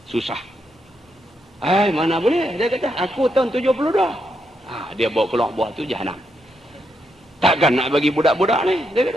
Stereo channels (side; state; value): both; normal; correlation 0.80